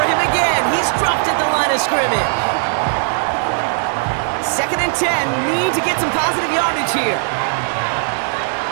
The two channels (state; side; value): silent; left; 57 dB below the other